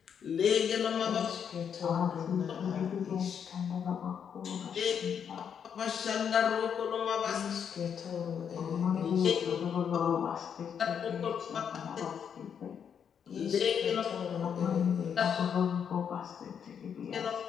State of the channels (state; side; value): quieter; right; 7.7 dB